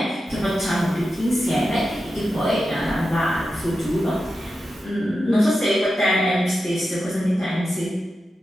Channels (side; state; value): both; normal; correlation 0.90